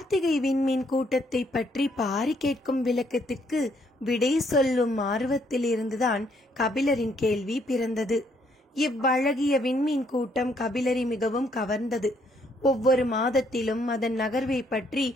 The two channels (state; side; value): normal; both; correlation 0.70